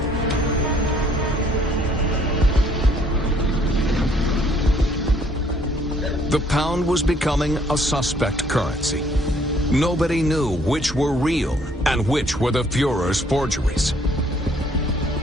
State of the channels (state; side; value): normal; both; correlation 0.62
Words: The pound was becoming a suspect currency. Nobody knew which were real and which were the Führer's forgeries.